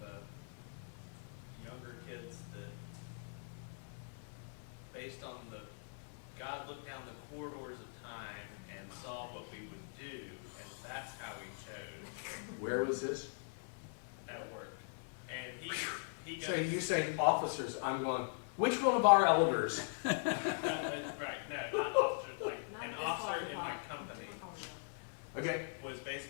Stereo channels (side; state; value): right; silent; 51 dB below the other